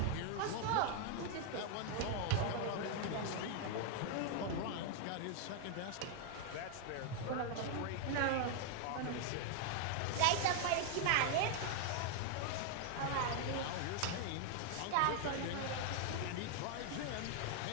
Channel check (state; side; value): different; both; correlation 0.00